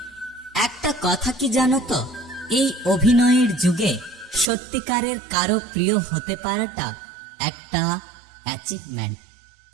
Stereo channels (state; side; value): drops out; left; at 4.5 s